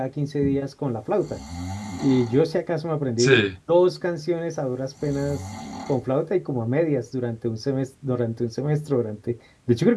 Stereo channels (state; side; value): identical; both; correlation 1.00